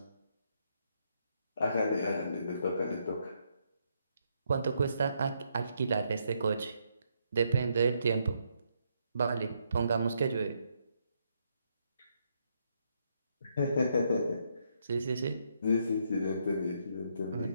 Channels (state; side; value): inverted; both; correlation -0.76